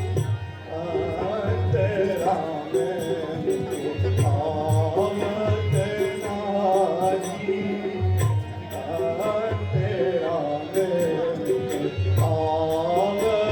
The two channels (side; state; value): both; identical; correlation 1.00